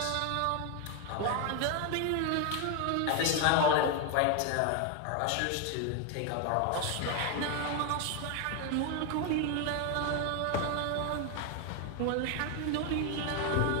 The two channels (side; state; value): both; different; correlation 0.01